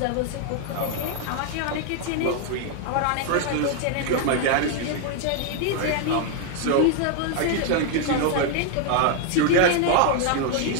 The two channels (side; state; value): both; different; correlation 0.00